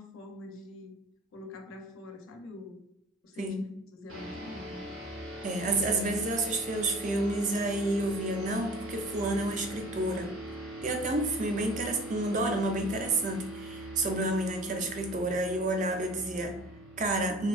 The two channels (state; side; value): normal; both; correlation 0.44